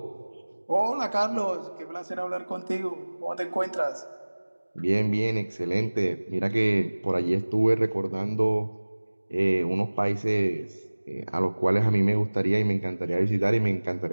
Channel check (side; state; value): both; inverted; correlation -1.00